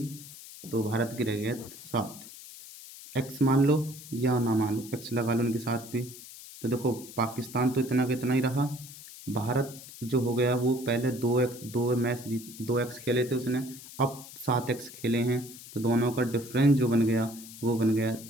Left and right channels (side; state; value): left; noise; hiss, 16 dB below the sound